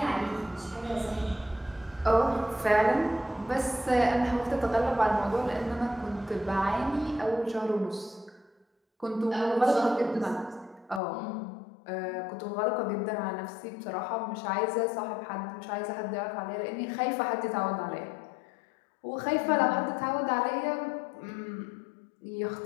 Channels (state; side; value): drops out; right; at 11.0 s